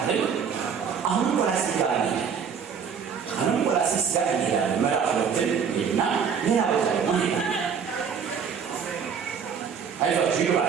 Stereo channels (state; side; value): quieter; left; 6.7 dB